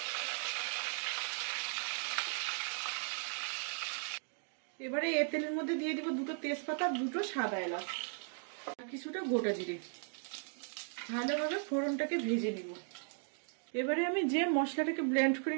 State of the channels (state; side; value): silent; left; 53 dB below the other